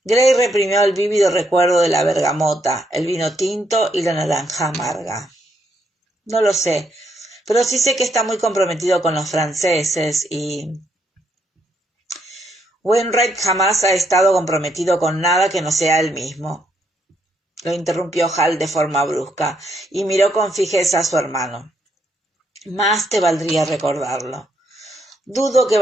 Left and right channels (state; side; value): normal; both; correlation 0.75